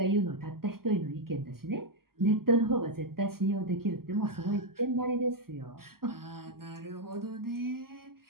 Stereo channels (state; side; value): late; left; 0.93 ms